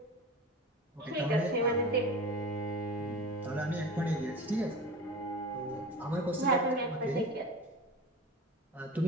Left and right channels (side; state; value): both; normal; correlation 0.33